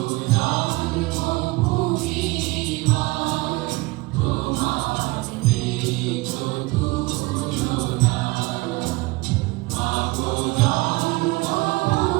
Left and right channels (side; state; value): left; quieter; 22.9 dB